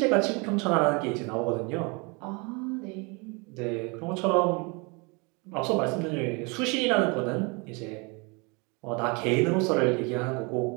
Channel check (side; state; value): left; quieter; 30.0 dB